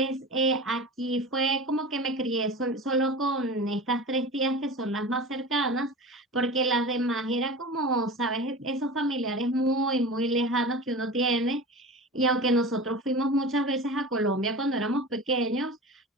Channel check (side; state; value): both; normal; correlation 0.32